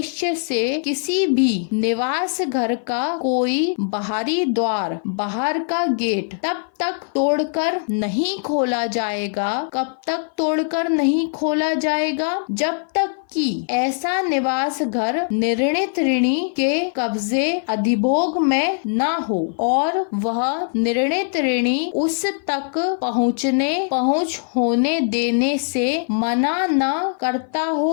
से किसी भी निवास घर का कोई बाहरी द्वार, बाहर का गेट तब तक तोड़कर नहीं खोला जाएगा। कब तक तोड़कर नहीं खोला जाएगा? जब तक कि ऐसा निवास घर निर्णित ऋणी के कब्जे अधिभोग में न हो और वह निर्णित ऋणी उस तक पहुँच होने देने से मना न करता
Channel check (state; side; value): silent; right; 58 dB below the other